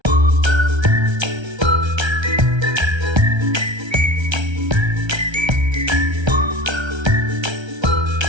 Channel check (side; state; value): left; late; 1.3 ms